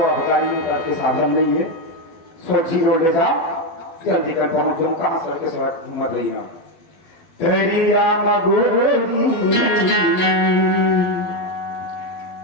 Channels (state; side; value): late; right; 12 ms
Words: के साधन नहीं है सोची बोल रहा जल्दी कर पहुंचो कहां सर के सड़क घूम रही है तेरिया मगोरी